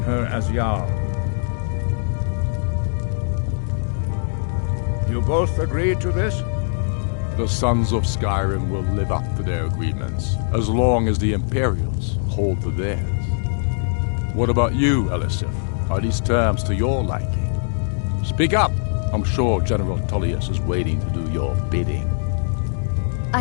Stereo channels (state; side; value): silent; right; digital silence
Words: her as Jarl. You both agree to this? The Sons of Skyrim will live up to their agreements, as long as the Imperials hold to theirs. What about you, Elisif? Are these terms to your liking? Speak up! I'm sure General Tullius is waiting to do your bidding. I